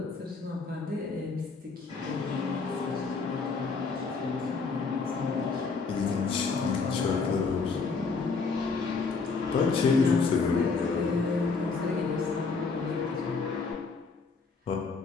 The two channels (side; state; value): right; quieter; 4.6 dB